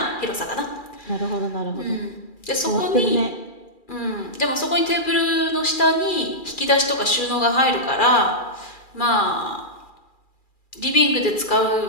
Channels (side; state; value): right; late; 2.4 ms